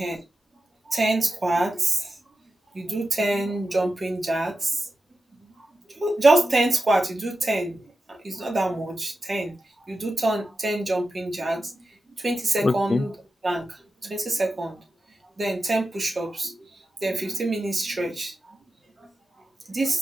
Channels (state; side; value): normal; both; correlation 0.92